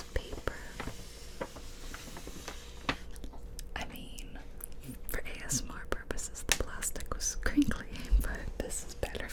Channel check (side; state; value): both; identical; correlation 1.00